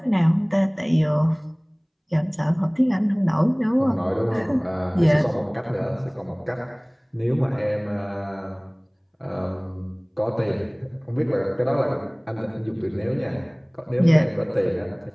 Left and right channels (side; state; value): both; identical; correlation 1.00